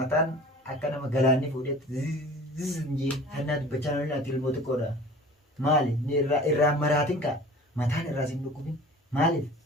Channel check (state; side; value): normal; both; correlation 0.43